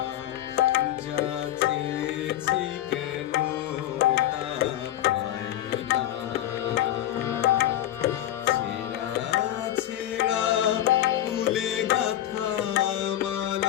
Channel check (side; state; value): right; quieter; 12.7 dB